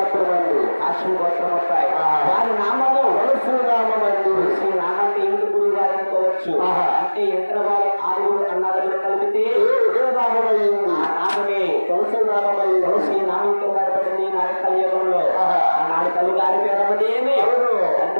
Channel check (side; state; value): both; inverted; correlation -1.00